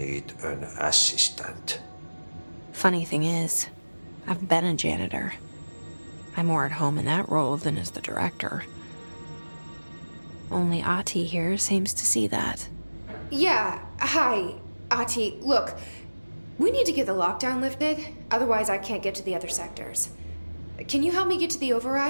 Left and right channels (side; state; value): both; inverted; correlation -1.00